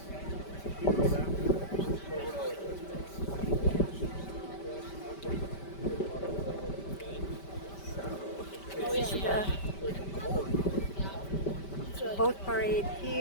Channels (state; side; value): late; right; 5.1 ms